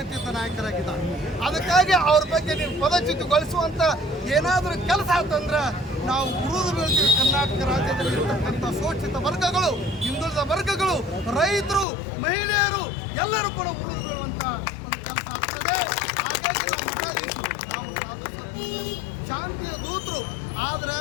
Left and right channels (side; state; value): right; drops out; at 11.9 s